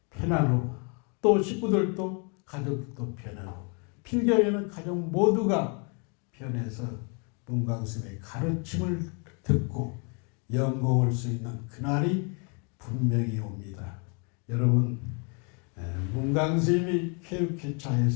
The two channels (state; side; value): quieter; right; 36.2 dB